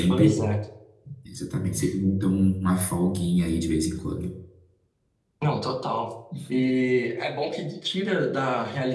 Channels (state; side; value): identical; both; correlation 1.00